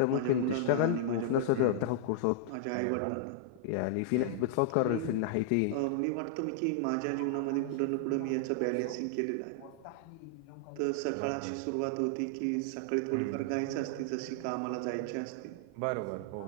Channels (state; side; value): different; both; correlation -0.01